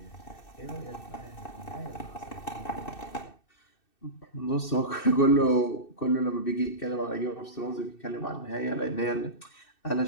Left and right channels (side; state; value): right; late; 2.6 ms